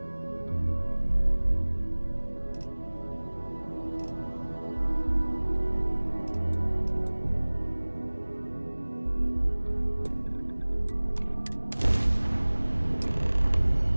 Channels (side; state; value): both; inverted; correlation -1.00